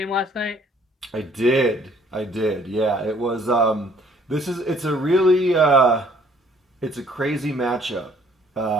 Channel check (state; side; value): normal; both; correlation 0.60